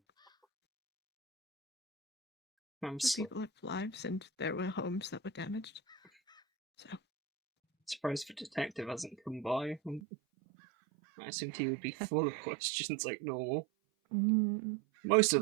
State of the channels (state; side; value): drops out; left; at 10.0 s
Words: I'm The people lived lives, and there were homes that were damaged. So, surprised the detective hasn't come by. I assumed he would be full of questions like normal. Most